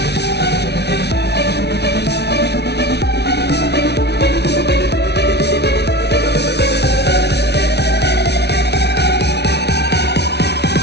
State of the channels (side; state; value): right; late; 0.49 ms